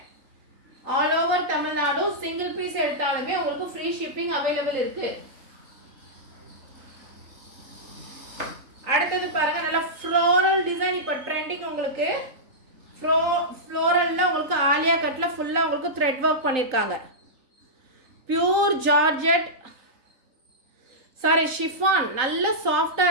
All over Tamil Nadu single piece எடுத்தாலுமே உங்களுக்கு ஃப்ரீ ஷிப்பிங் அவைலபிள் இருக்கு. அடுத்தது பாருங்க நல்ல ஃப்ளோரல் டிசைன் இப்போ ட்ரெண்டிங். உங்களுக்கு ஃப்ளோரல்ல உங்களுக்கு ஆலியா கட்ல ஃபுல்லா உங்களுக்கு த்ரெட் ஒர்க் பண்ணிருக்காங்க. Pure georgette sorry chiffon. நல்ல சாஃப்டா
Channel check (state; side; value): late; left; 3.9 ms